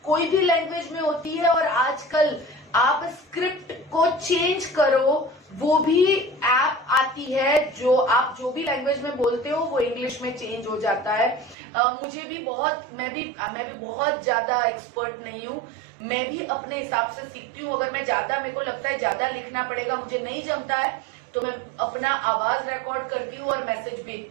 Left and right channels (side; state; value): left; drops out; at 11.6 s